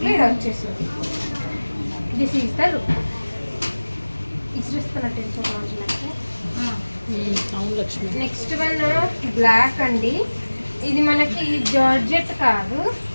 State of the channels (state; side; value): inverted; both; correlation -1.00